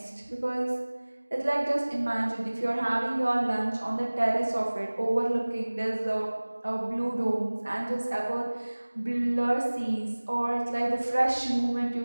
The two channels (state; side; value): inverted; both; correlation -1.00